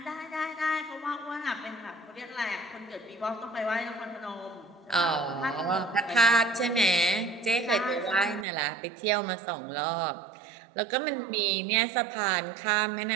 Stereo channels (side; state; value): left; drops out; at 8.5 s